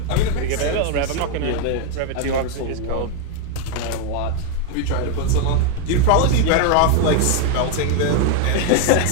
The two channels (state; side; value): different; both; correlation 0.01